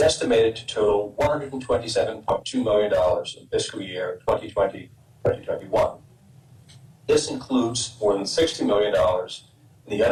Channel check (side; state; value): both; identical; correlation 1.00